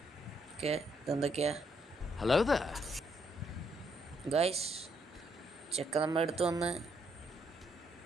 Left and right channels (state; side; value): normal; both; correlation 0.73